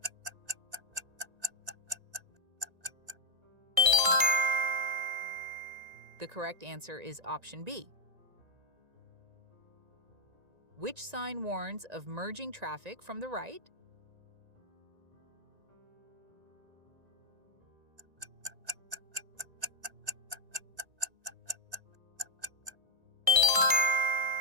The correct answer is option B. Which sign warns of merging traffic from the right?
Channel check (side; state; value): left; late; 1.9 ms